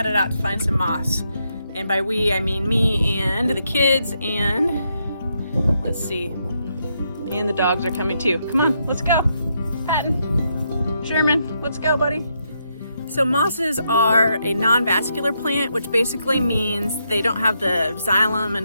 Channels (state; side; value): inverted; both; correlation -0.79